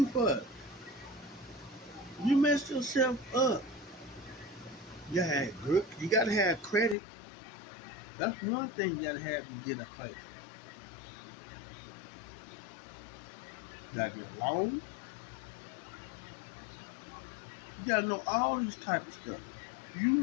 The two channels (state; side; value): drops out; right; at 7.0 s